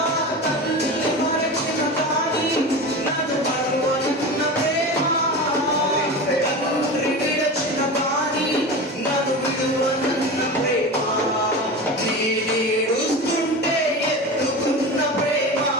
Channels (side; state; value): both; normal; correlation 0.28